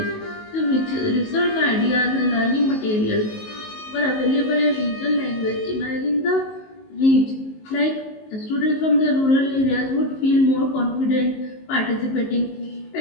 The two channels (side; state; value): right; late; 19 ms